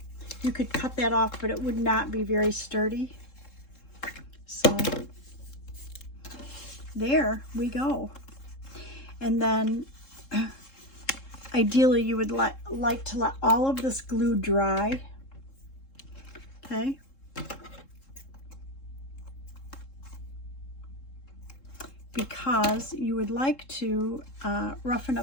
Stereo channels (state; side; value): late; right; 3.7 ms